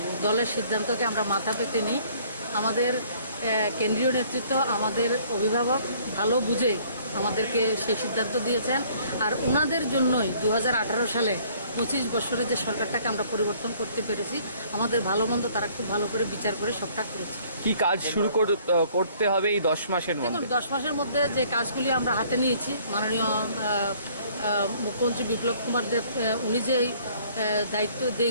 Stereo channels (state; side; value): inverted; both; correlation -0.58